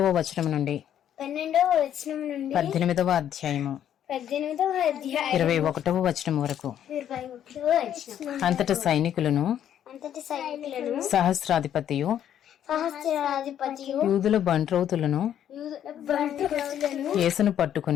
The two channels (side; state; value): right; quieter; 10.2 dB